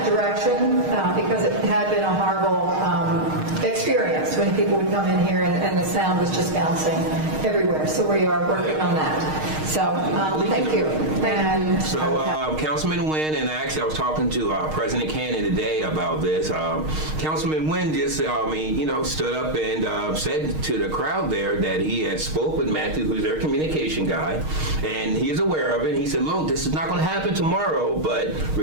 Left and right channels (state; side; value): late; left; 6.5 ms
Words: direction because it had been a horrible experience when people would come in here and the sound was just bouncing everywhere. So we are working on that. So thank you. And, Councilman Wynn, and actually I was talking to President Cannon today about this. Councilman Wynn just, stood up and said to the crowd there that he had spoke with Matthew, who's their communication guy, and he is aware of it. And he said, look, this is not going to happen tomorrow, but